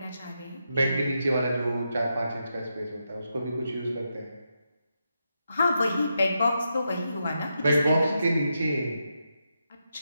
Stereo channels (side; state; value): both; inverted; correlation -0.84